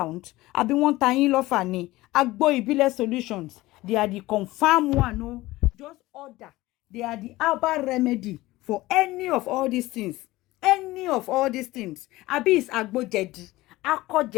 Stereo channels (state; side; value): quieter; right; 18.5 dB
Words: Àbí wọ́n ta yín lọ́fà ni? Agbo Ìbílẹ̀ solutions. They are the confirmed one. No, just order. They are the herbal remedy for any of all these things. Any of all these things. Àbí is agbo jẹ̀dí, akọ